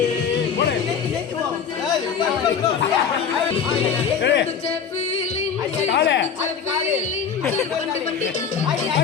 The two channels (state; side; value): quieter; right; 6.9 dB